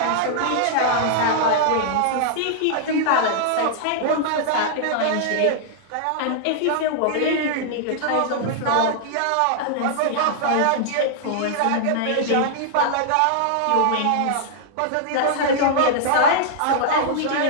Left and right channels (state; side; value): different; both; correlation -0.01